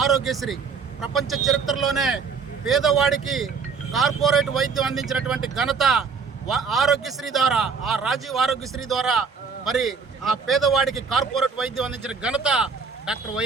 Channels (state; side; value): quieter; left; 5.4 dB